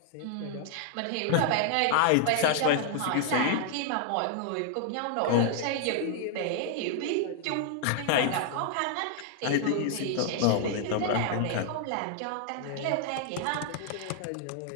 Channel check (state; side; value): different; both; correlation 0.00